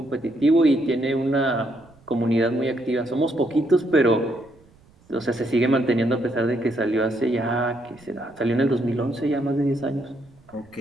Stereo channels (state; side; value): noise; right; rumble, 29 dB below the sound